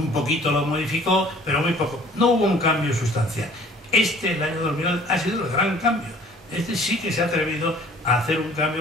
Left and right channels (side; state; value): both; normal; correlation 0.52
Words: poquito lo modificó, pero muy poco. No hubo un cambio sustancial. El año 2011, ha sido el gran cambio. Sí que se ha atrevido a hacer un